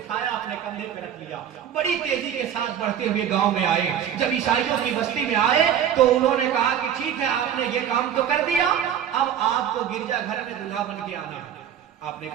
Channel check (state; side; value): quieter; left; 9.4 dB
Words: अपने कंधे पर रख लिया। बड़ी तेजी के साथ बढ़ते हुए गांव में आए। जब ईसाइयों की बस्ती में आए तो उन्होंने कहा कि ठीक है आपने ये काम तो कर दिया, अब आपको गिरजाघर में दूल्हा बन के आना है। आपने